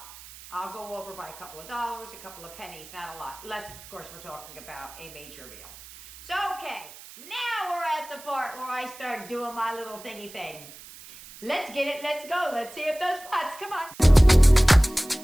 I'll go over by a couple of dollars, a couple of pennies, not a lot. Unless, of course, we're talking about a major meal. So, okay. Now we're at the part where I start doing my little thingy thing. Let's get it. Let's go. Let's see if those pots. Come on.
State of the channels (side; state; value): right; noise; hiss, 18 dB below the sound